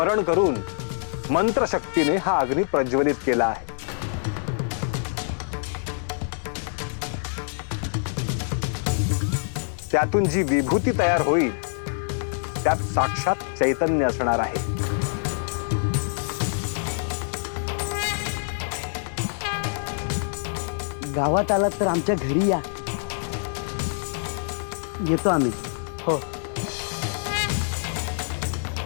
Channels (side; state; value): right; silent; digital silence